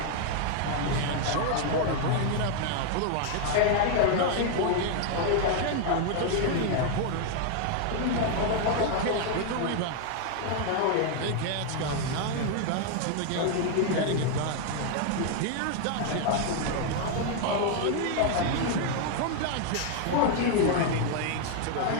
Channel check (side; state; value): both; different; correlation 0.00